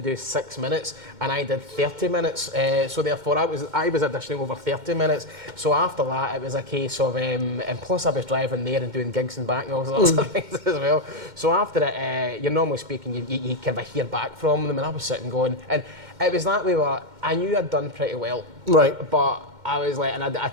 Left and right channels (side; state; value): left; late; 2.1 ms